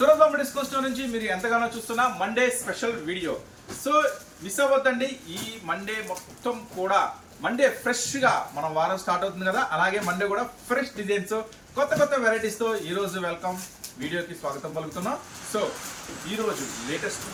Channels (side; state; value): both; identical; correlation 1.00